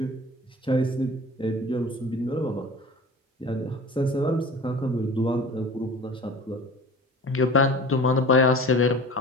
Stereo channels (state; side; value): normal; both; correlation 0.40